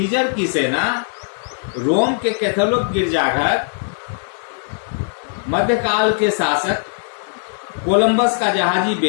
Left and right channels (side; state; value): right; silent; digital silence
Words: की सेना, रोम के कैथोलिक गिरजाघर, मध्यकाल के शासक, कोलंबस का जहाजी